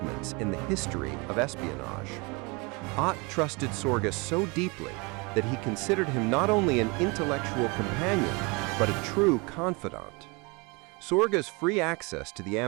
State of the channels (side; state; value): left; quieter; 28.3 dB